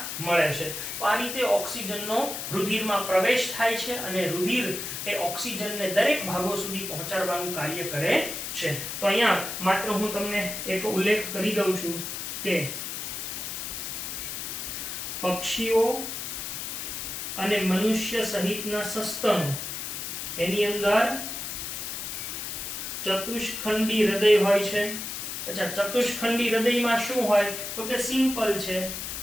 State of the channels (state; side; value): noise; left; hiss, 5 dB below the sound